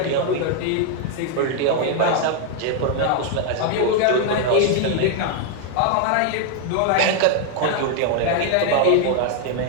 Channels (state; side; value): different; both; correlation 0.00